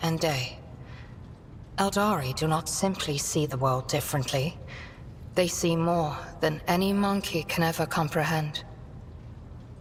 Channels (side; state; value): both; identical; correlation 1.00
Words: and day. Eldari do not simply see the world differently. They see more than any monkey can ever comprehend.